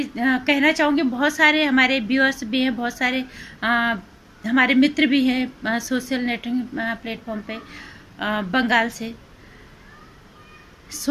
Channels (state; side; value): identical; both; correlation 1.00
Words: कहना चाहूँगी, बहुत सारे हमारे व्यूअर्स भी हैं, बहुत सारे हमारे मित्र भी हैं सोशल नेटवर्किंग प्लेटफॉर्म पे बंगाल से।